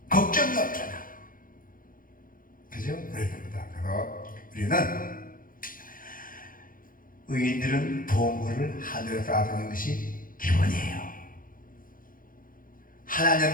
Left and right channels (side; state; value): right; late; 0.40 ms